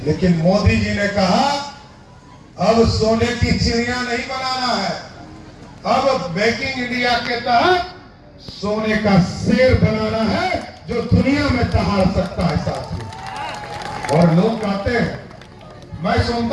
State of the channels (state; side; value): identical; both; correlation 1.00